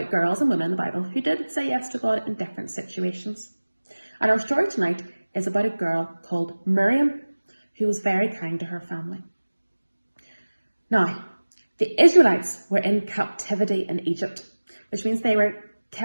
girls and women in the Bible who did say yes to God in different situations. And our story tonight is about a girl called Miriam who was very kind to her family. Now, the Israelites were in captivity in Egypt, which means they were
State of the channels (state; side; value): inverted; both; correlation -1.00